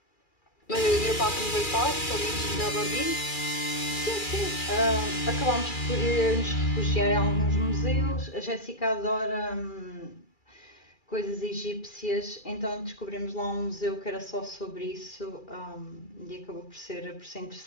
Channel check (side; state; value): right; late; 2.3 ms